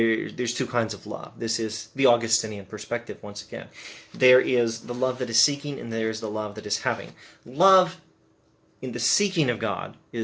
two kinds of love. This is the Augustinian perspective, once again. There is the love that is seeking, and there is the love that is having. Love in the seeking of God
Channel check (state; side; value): identical; both; correlation 1.00